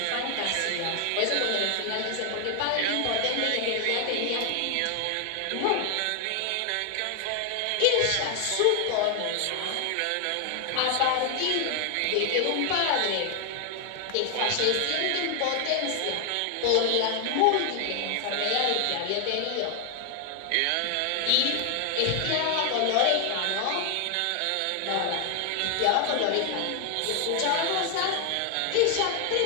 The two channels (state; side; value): different; both; correlation 0.00